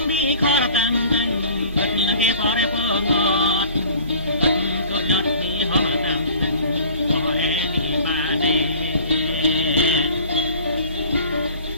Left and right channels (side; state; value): both; inverted; correlation -0.48